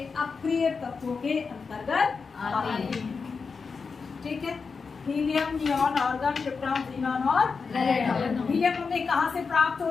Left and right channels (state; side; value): quieter; right; 5.0 dB